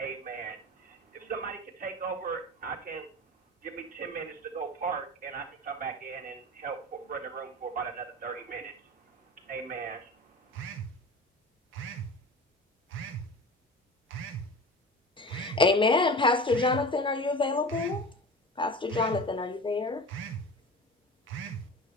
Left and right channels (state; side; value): normal; both; correlation 0.34